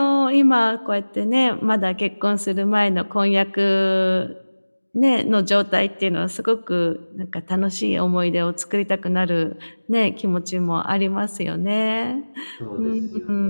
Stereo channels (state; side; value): inverted; both; correlation -1.00